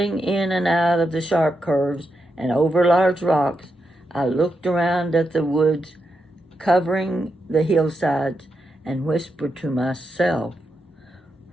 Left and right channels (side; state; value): both; normal; correlation 0.85